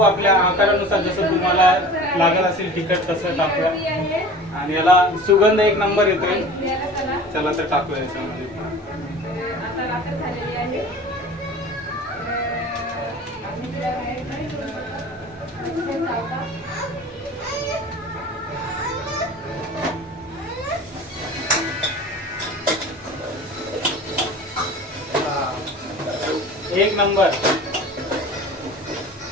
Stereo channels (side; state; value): both; normal; correlation 0.40